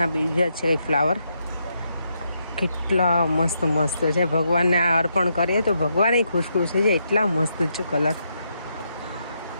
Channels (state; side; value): inverted; both; correlation -0.80